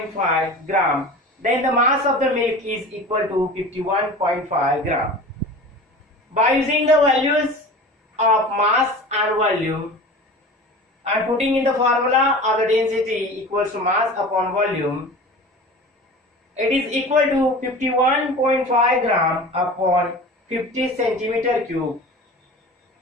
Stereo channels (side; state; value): both; normal; correlation 0.36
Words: gram. Then the mass of the milk is equal to 51.5 gram. By using the values of mass and volume and putting in the formula of the density equals to mass upon volume, it is equal to 51.5 gram upon 50 centimeter cube,